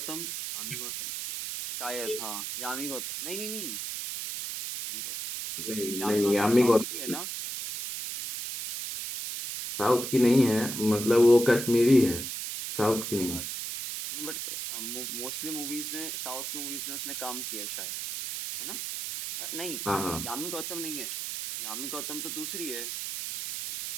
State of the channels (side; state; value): right; noise; hiss, 5 dB below the sound